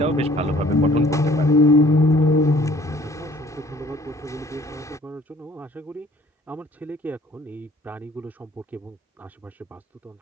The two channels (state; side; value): normal; both; correlation 0.55